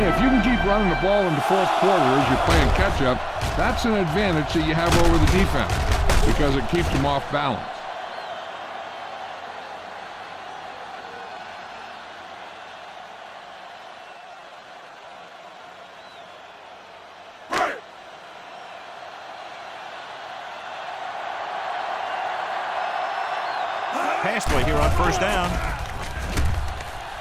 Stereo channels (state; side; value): identical; both; correlation 1.00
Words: if you can keep running the ball in the 4th quarter as you're playing catch-up, that's an advantage that you have over the defense. because it keeps them off balance. Pass play here on first down.